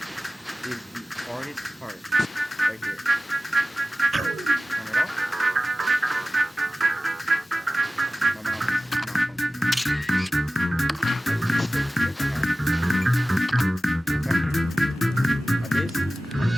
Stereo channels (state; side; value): normal; both; correlation 0.96